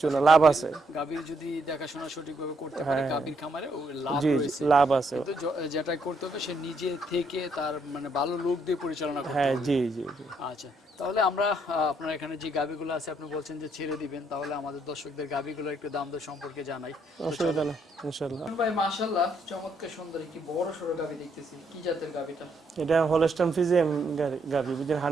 না, লাভ আছে। গাভীর যদি দেখাশোনা সঠিকভাবে করতে পারে গাভীর খামারে ও লাভ জি জি, রয়েছে। লাভ আছে। কিন্তু যেটা করতে হবে সে নিজে থেকে তার মানে ভালো লোক দিয়ে পরিচালনা করতে হ্যাঁ হবে। জি জি জি। আচ্ছা, তাহলে আমরা আপনার এখানে যে গাভীগুলো আছে আপনি বলছেন যে ছেড়ে দিবেন, তাহলে আমাদের দর্শকদের গাভীগুলো একটু দাম দর সম্পর্কে জানাই। অসুবিধা নেই ইনশাল্লাহ। ভাই মাশাআল্লাহ, চমৎকার সুন্দর কি বড় সরো গাভী দেখতেছি। কি জাতের গাভীটা? এটা হলস্টাইন ফ্রিজিয়ান গাভী, বুঝছেন,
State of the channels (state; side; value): normal; both; correlation 0.73